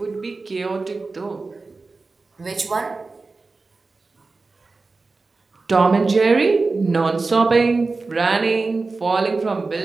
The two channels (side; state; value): left; quieter; 3.8 dB